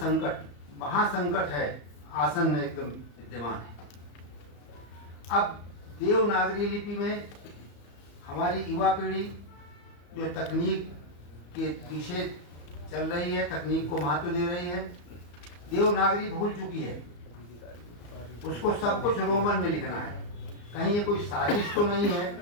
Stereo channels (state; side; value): late; right; 34 ms